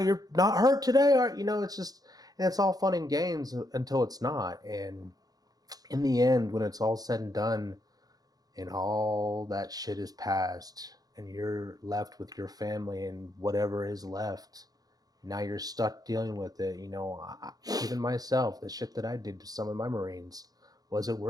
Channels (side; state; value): left; late; 0.18 ms